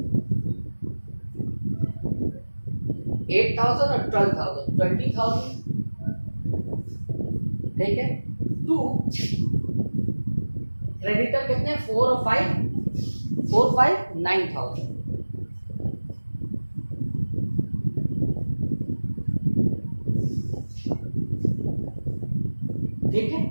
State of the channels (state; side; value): inverted; both; correlation -1.00